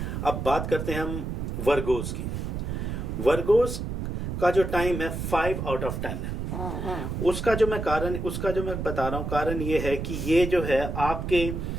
अब बात करते हैं हम वर्गोस की। वर्गोस का जो टाइम है 5 आउट ऑफ 10 है। उसका जो मैं बता रहा हूँ, कारण ये है कि ये जो है आपके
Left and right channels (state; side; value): noise; right; rumble, 4 dB below the sound